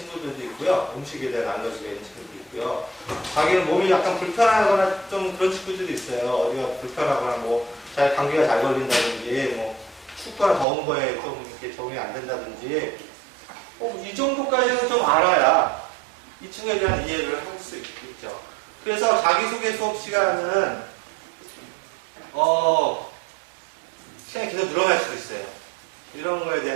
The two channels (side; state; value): left; drops out; at 10.7 s